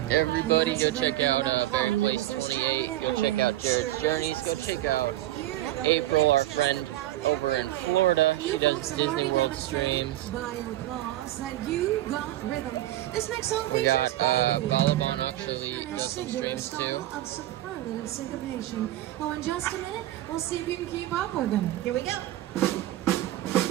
Everybody go check out Berry Place 28. Go check out Jared's Journeys. Go check out April, our friend over in Florida. She does Disney World streams. By applause that you got rhythm. This next song We got features Balaban actually does some singular streams style too. of superlative syncopation. Oh, in just a minute, we'll see if you can keep up with them. Here we go.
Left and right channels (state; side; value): quieter; left; 14.9 dB